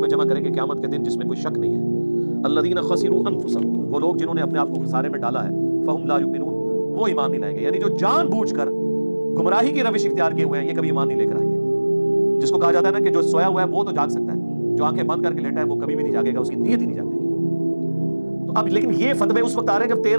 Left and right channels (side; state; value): both; inverted; correlation -1.00